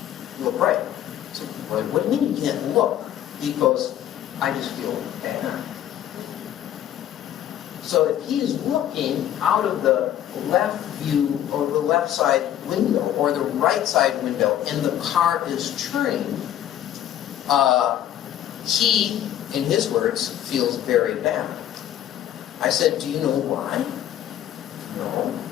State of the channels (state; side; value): quieter; right; 11.4 dB